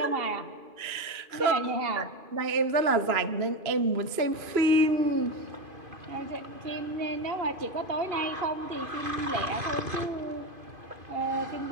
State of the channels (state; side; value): late; left; 2.9 ms